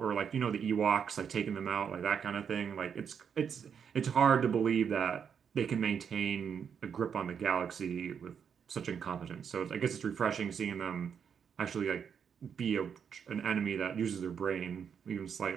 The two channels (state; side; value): quieter; left; 7.3 dB